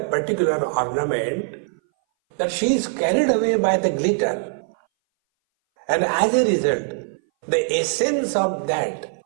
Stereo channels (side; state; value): left; silent; 60 dB below the other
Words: particular ornament that she is carried away by the glitter. And as a result, the essence of that,